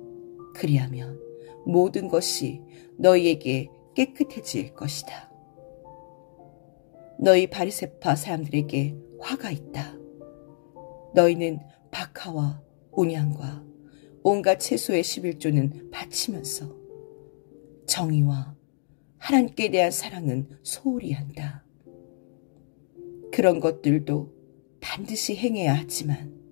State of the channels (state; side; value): silent; right; digital silence